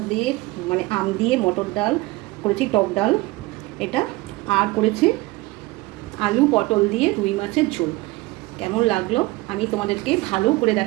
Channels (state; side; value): quieter; left; 21.2 dB